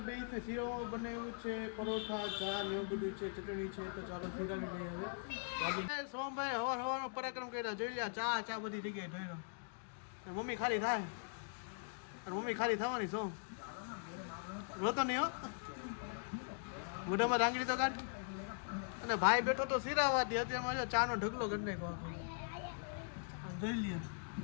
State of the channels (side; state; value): right; silent; digital silence